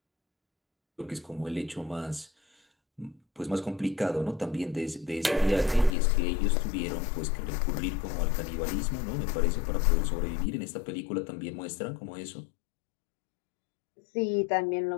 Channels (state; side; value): drops out; right; at 6.0 s